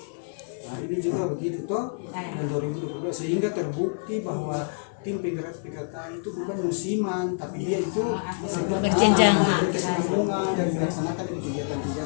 Nah, ini juga begitu toh. Dan 2022 sehingga terbukti bahwa tim penggerak PKK itu bukan musiman, tapi dia itu Berjenjang. berkesinambungan dan dilaksanakan di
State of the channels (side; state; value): right; silent; digital silence